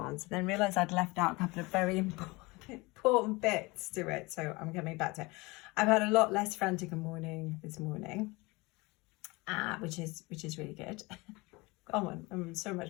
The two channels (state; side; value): quieter; right; 24.2 dB